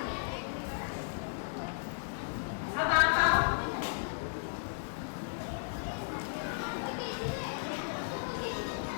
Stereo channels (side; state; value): right; silent; digital silence